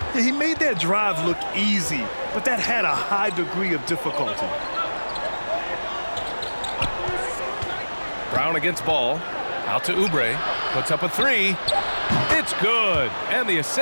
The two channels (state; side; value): inverted; both; correlation -1.00